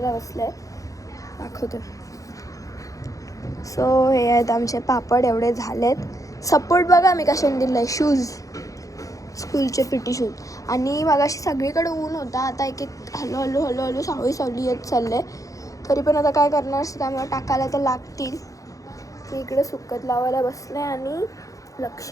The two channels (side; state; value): right; late; 0.16 ms